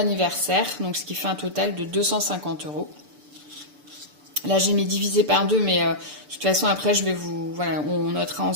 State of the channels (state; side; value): late; left; 6.8 ms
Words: donc ce qui fait un total de 250 €. Là j'ai mis divisé par 2, mais de toute façon après on notera